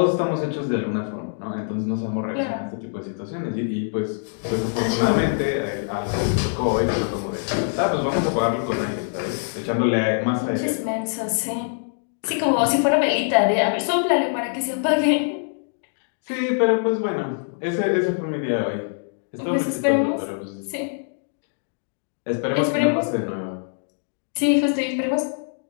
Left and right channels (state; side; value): silent; right; digital silence